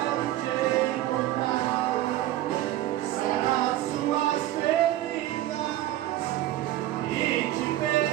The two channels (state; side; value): quieter; left; 14.4 dB